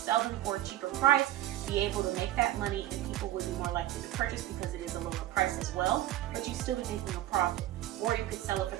them for a cheaper price, be able to make that money, and people would be more likely to purchase because it is a lower price as well, but you'd still be making a profit. Or you could sell it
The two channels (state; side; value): quieter; left; 14.4 dB